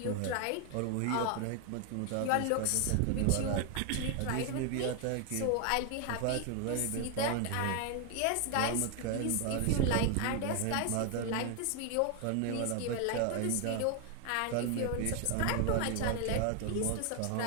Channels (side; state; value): both; different; correlation 0.01